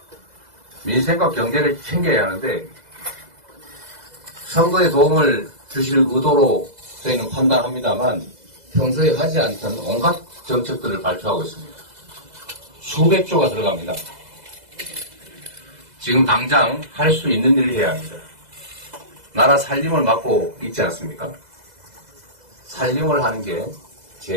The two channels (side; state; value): left; late; 2.0 ms